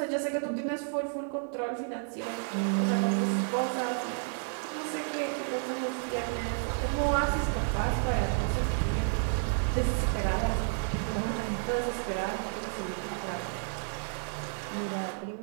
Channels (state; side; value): silent; left; 57 dB below the other